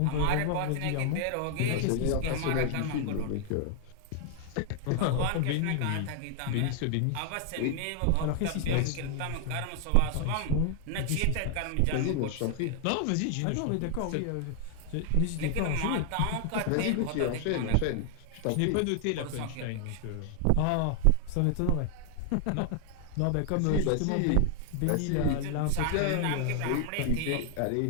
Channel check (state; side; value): different; both; correlation 0.00